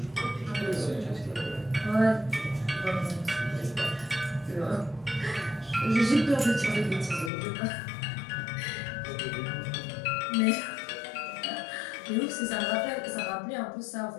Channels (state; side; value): drops out; right; at 7.3 s